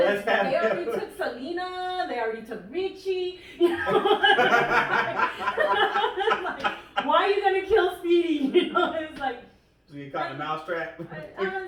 they already took Selena, they already took Richie. You know? Like, why are you gonna kill Speedy? You know, it's like. So you caught the mousetrap. I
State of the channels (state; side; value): identical; both; correlation 1.00